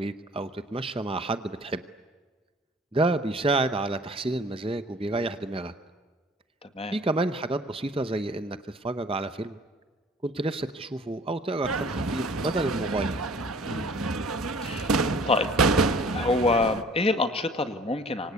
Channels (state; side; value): normal; both; correlation 0.50